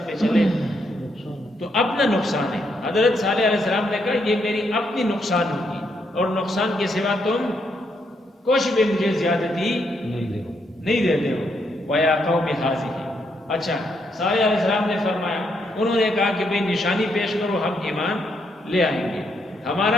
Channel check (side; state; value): both; normal; correlation 0.77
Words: پہ چلے تو اپنا نقصان ہے۔ حضرت صالح علیہ السلام نے کہا یہ میری اپنی نقصان ہوگی، اور نقصان کے سوا تم کچھ بھی مجھے زیادتی نہیں دیتے ہو۔ وَيَا قَوْمِ هَٰذِهِ، اچھا صالح علیہ السلام نے فرمایا، انہوں نے کہا کہ بھئی نشانی پیش کرو، ہم ایمان لے آئیں گے۔